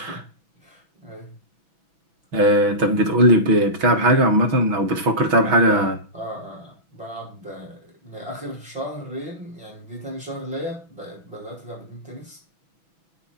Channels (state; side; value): late; left; 6.1 ms